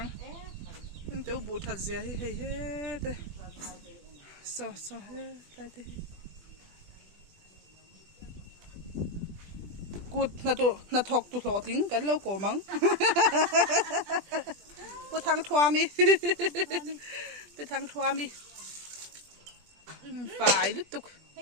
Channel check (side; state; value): left; late; 20 ms